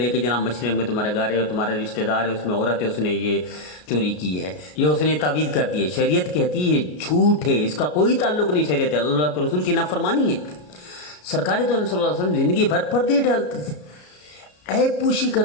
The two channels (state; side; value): late; right; 33 ms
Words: کہ جناب مشرق میں تمہارے گھر ہے اور تمہارے رشتہ دار ہے, اس میں عورت ہے, اس نے یہ چوری کی ہے, یہ اس نے تعویذ کر دی ہے. شریعت کہتی ہے یہ جھوٹ ہے, اس کا کوئی تعلق نہیں شریعت ہے, اللہ کے رسول کی نافرمانی ہے. سرکار تو صلی اللہ علیہ وسلم زندگی بھر پردے ڈالتے تھے, عیب پوشی